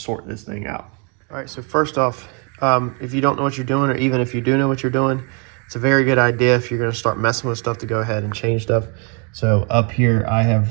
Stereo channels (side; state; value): left; quieter; 35.3 dB